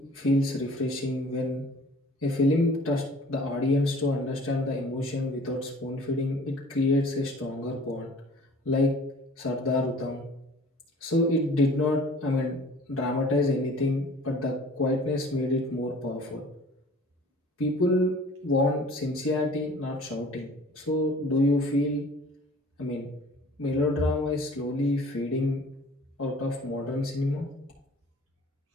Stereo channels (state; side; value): normal; both; correlation 0.48